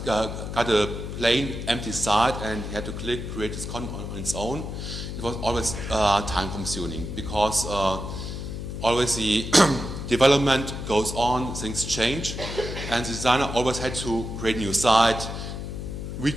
got a plain empty site and he had to create this content on its own. It was always time consuming because always the development goes on, things change, and the designer always had to create a new site,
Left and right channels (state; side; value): noise; left; hum, 6 dB below the sound